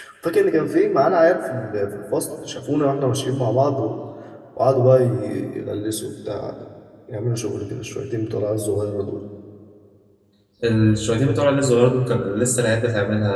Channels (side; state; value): both; identical; correlation 1.00